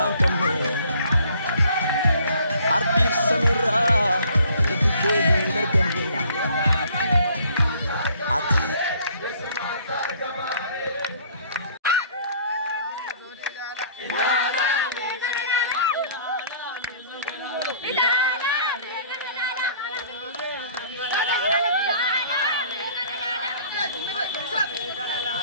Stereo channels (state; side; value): inverted; both; correlation -0.56